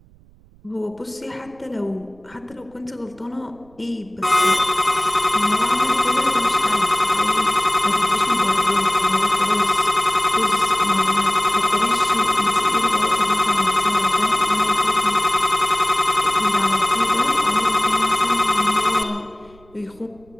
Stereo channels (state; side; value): noise; right; rumble, 29 dB below the sound